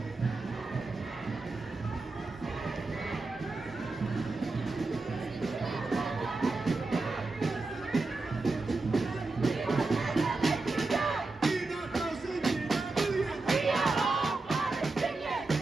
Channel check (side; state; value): left; quieter; 3.5 dB